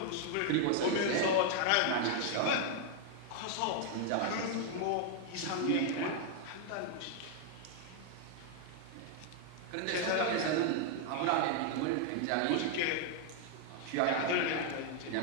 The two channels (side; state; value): both; different; correlation 0.00